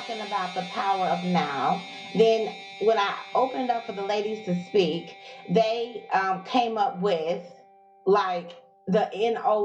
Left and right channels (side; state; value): both; identical; correlation 1.00